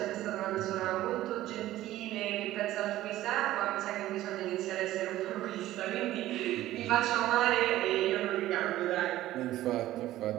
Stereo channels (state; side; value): quieter; left; 14.8 dB